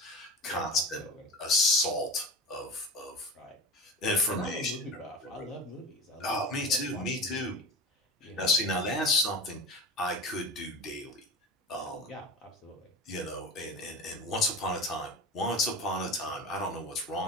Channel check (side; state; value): both; normal; correlation 0.31